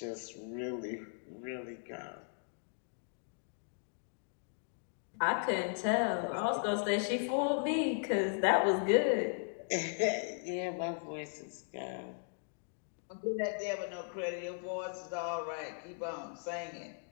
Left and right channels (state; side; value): silent; right; 53 dB below the other